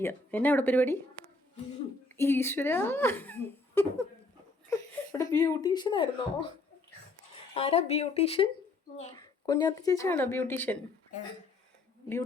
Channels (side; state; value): right; quieter; 3.4 dB